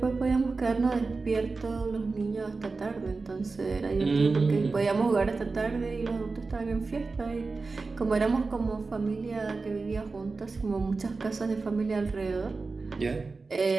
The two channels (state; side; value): quieter; left; 4.0 dB